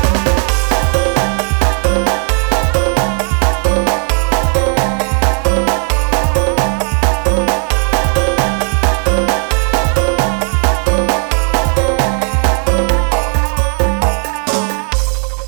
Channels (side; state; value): left; quieter; 37.6 dB